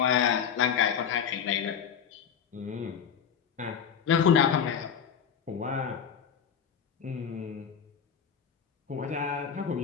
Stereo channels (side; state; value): right; quieter; 7.6 dB